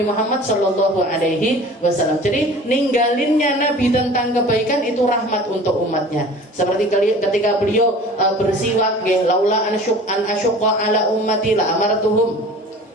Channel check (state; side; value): normal; both; correlation 0.43